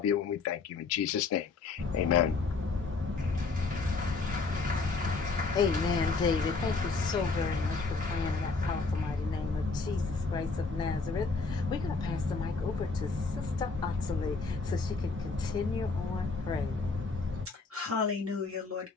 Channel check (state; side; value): quieter; right; 4.2 dB